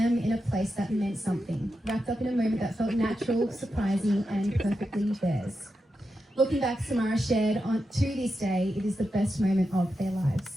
in a place that meant something, wrapped up in a moment that felt natural, surprising, and perfectly theirs. Looking back, Samara shared, to this day, it is the best moment of their lives.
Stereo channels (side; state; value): both; normal; correlation 0.88